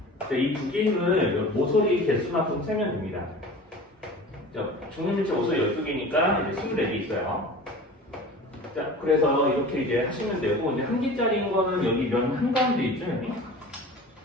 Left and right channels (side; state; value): both; normal; correlation 0.38